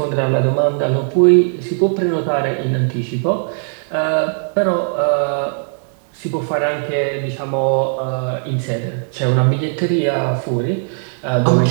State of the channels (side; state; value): left; silent; 67 dB below the other